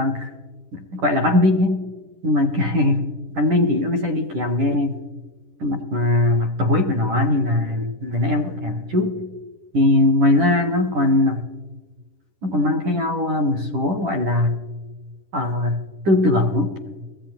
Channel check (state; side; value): late; left; 10 ms